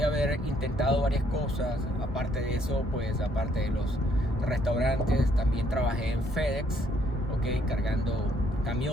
haber intentado varias cosas, aparte de eso, pues aparte de los restaurantes, también trabajé en FedEx, cargando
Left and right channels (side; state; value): both; normal; correlation 0.68